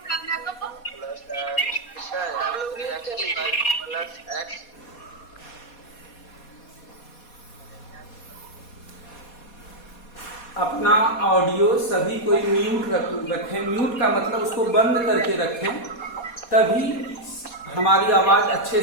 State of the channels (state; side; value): late; right; 4.2 ms